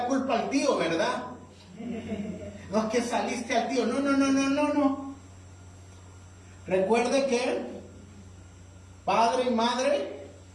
culpa al tío, ¿verdad? No es que saliste al tío, no. Recuerde que padre y madre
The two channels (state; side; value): identical; both; correlation 1.00